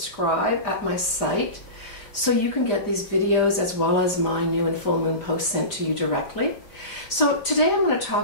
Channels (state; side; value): late; right; 5.0 ms